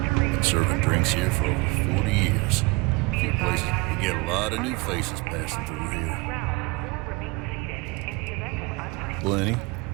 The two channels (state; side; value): quieter; left; 25.7 dB